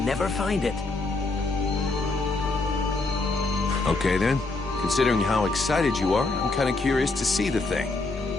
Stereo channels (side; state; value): right; quieter; 3.4 dB